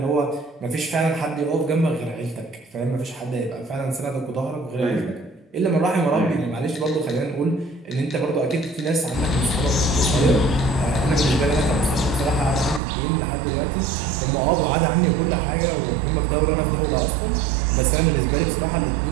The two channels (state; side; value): drops out; left; at 12.8 s